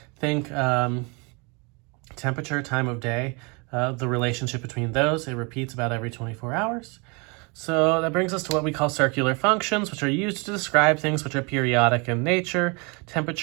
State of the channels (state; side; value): quieter; left; 30.6 dB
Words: Think temperature, time of day, the relationship between those, it repeats about every 24 hours. So that brings us to what we call circular functions, which are used to describe things which are periodic in nature,